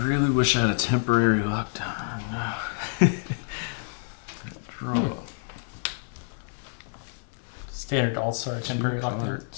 really wish I had a temporary lockdown. Draw. Standard all-star temporary lockdown.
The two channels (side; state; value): right; silent; digital silence